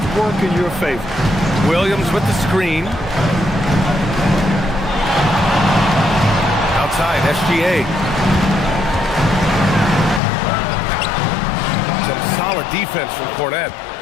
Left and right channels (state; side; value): drops out; right; at 10.2 s